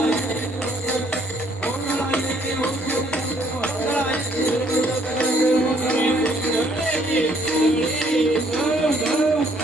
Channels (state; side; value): normal; both; correlation 0.65